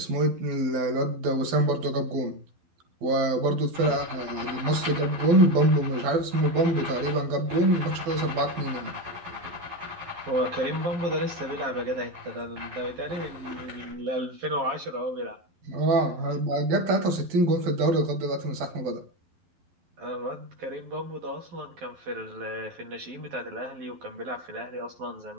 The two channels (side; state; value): left; late; 11 ms